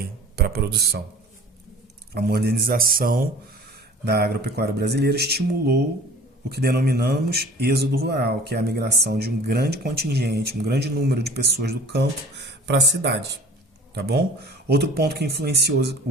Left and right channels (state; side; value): normal; both; correlation 0.45